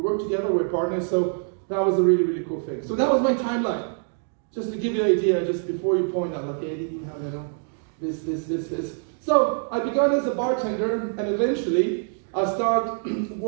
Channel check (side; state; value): left; silent; 62 dB below the other